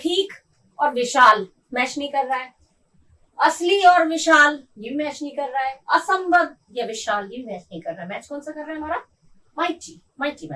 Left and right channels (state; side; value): identical; both; correlation 1.00